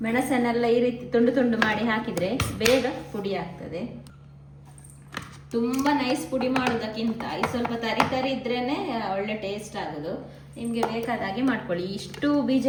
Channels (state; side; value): identical; both; correlation 1.00